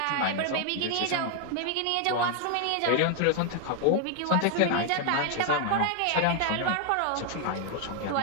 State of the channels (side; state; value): both; different; correlation 0.00